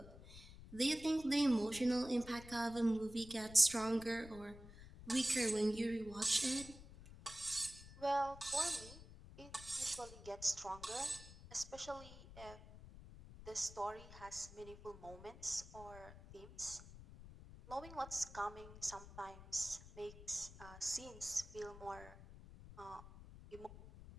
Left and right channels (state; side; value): noise; left; rumble, 16 dB below the sound